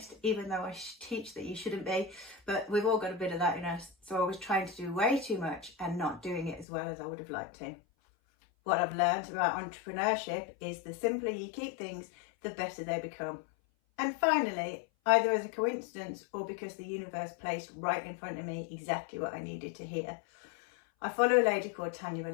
even though I teach that you shouldn't be, but we've all got a bit of that in us, so I was trying to do way too much and not doing it as well as I would have liked to. What I've learned about entrepreneurship is the simpler you keep things, the better they become. And finally, either as a coincidence or because the universe placed right in front of me exactly what I needed to hear, I follow a lady called Tanya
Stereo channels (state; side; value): drops out; right; at 6.7 s